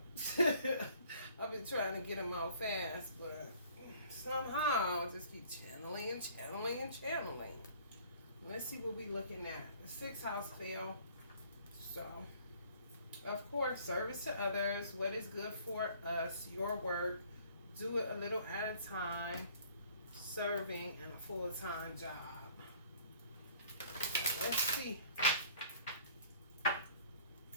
I've been trying to get them out fast, but somehow I just keep channeling and channeling and channeling. Let's see what we're looking at. The sixth house fell. So, of course, service to others. What is good for us? Your work. Do it a little at a time. Serving in a full-time job. So let's see.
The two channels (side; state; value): both; inverted; correlation -0.55